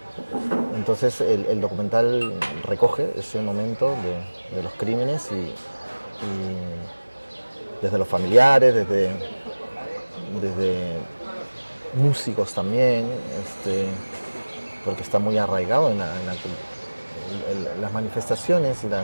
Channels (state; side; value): inverted; both; correlation -1.00